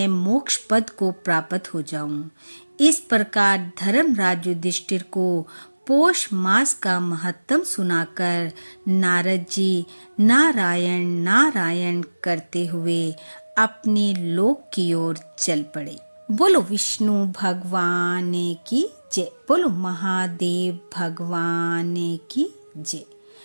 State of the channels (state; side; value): inverted; both; correlation -1.00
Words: मोक्ष पद को प्राप्त हो जाऊं। इस प्रकार धर्मराज युधिष्ठिर को पौष मास का महत्व सुनाकर नारद जी नारायण नारायण करते हुए अपने लोक की ओर चल पड़े। बोलो विष्णु भगवान की जय, बोलो महादेव भगवान की जय।